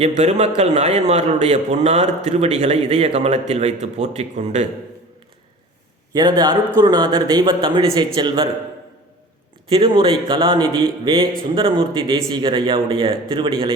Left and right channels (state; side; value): normal; both; correlation 0.40